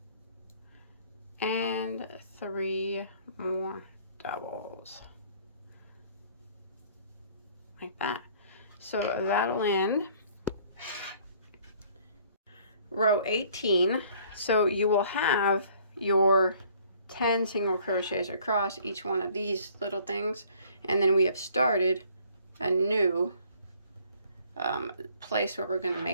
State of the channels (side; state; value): both; inverted; correlation -0.58